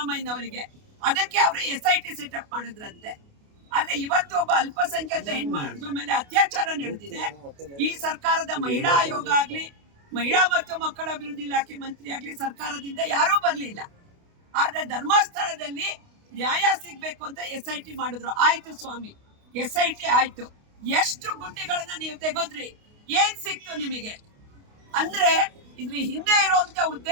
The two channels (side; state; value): left; late; 29 ms